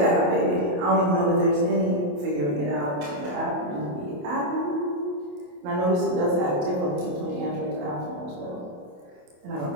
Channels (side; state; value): left; late; 28 ms